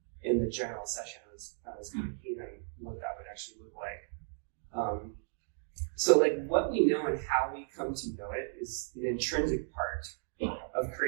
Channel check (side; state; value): left; silent; digital silence